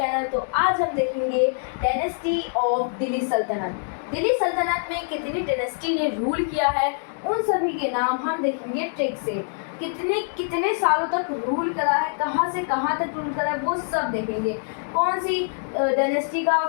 तो आज हम देखेंगे डायनेस्टी ऑफ दिल्ली सल्तनत। दिल्ली सल्तनत में कितनी डायनेस्टी ने रूल किया है उन सभी के नाम हम देखेंगे ट्रिक से। कितने कितने सालों तक रूल करा है, कहाँ से कहाँ तक रूल करा है, वो सब देखेंगे। कौन सी डायनेस्टी का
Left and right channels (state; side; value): silent; right; digital silence